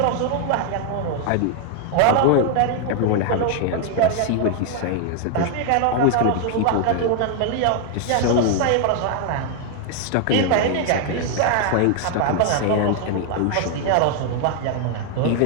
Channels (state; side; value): different; both; correlation 0.00